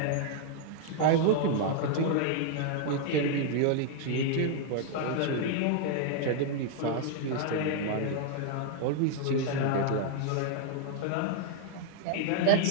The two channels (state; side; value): different; both; correlation 0.00